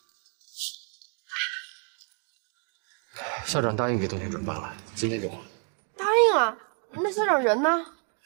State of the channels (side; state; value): left; quieter; 39.9 dB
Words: 校长答应给冬天转班了，今天就还。答应了，那校长人呢？